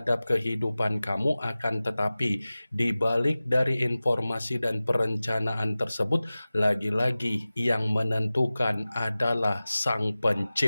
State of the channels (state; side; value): inverted; both; correlation -0.97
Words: kehidupan kamu, akan tetapi di balik dari informasi dan perencanaan tersebut, lagi-lagi yang menentukan adalah Sang